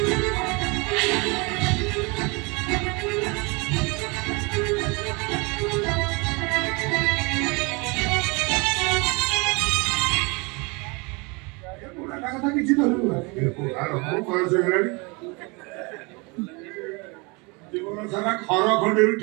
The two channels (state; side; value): quieter; left; 28.7 dB